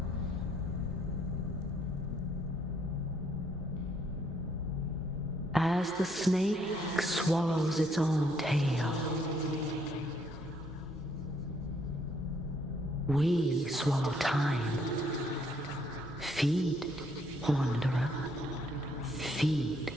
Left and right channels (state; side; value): normal; both; correlation 0.68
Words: as the snake swallows its own tail. We swallow time. Feed, wanderer. Feed.